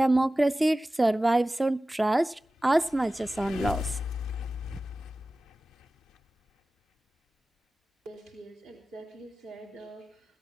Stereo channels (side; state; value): both; normal; correlation 0.96